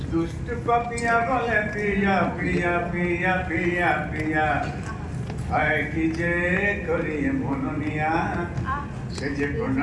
দুষ্ট পাপিয়া বলে প্রিয়া প্রিয়া প্রিয়া প্রিয়া প্রিয়া, হয় কি যে করি মননিয়া, সে যে কোন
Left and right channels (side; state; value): both; identical; correlation 1.00